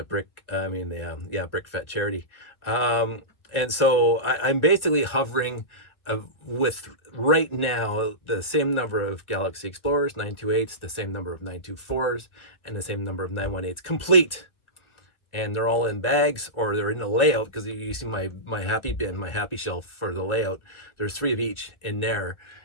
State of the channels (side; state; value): right; late; 1.3 ms